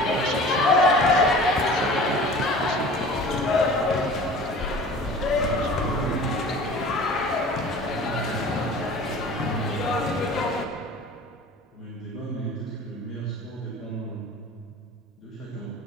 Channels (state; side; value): normal; both; correlation 0.42